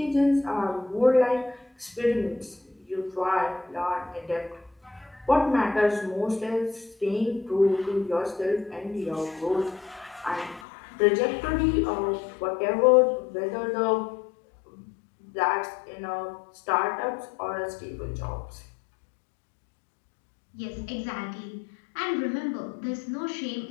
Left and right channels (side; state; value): right; drops out; at 10.7 s